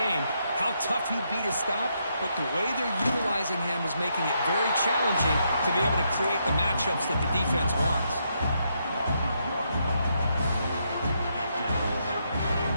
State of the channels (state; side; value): inverted; both; correlation -0.78